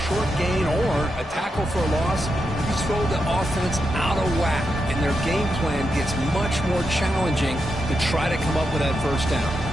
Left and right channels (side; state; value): both; normal; correlation 0.85